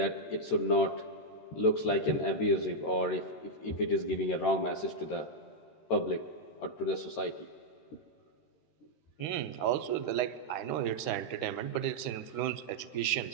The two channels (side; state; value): right; late; 13 ms